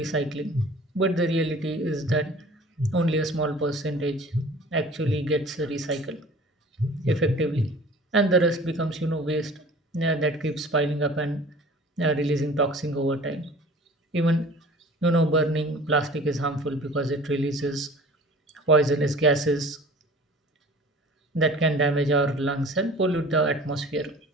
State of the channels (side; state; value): both; normal; correlation 0.45